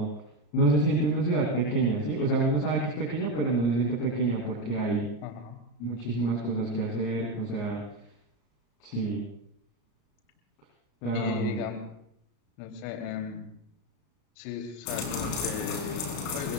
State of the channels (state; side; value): late; right; 34 ms